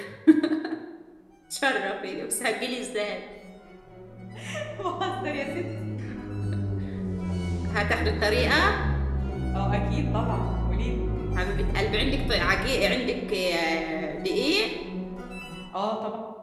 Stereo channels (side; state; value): both; identical; correlation 1.00